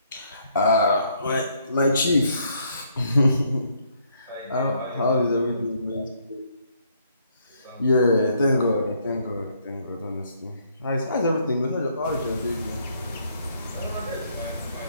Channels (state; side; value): inverted; both; correlation -0.69